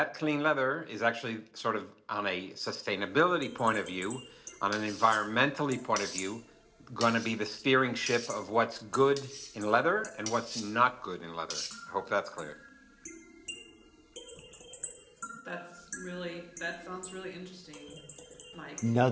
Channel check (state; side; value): identical; both; correlation 1.00